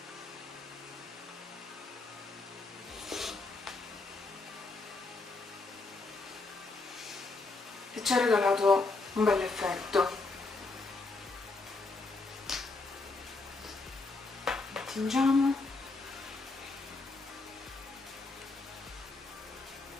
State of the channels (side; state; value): right; quieter; 3.5 dB